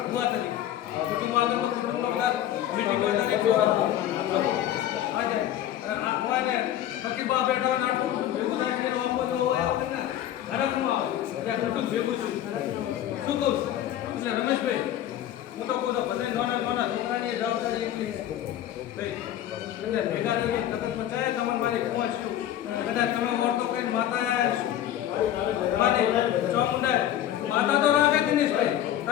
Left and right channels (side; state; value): right; quieter; 11.8 dB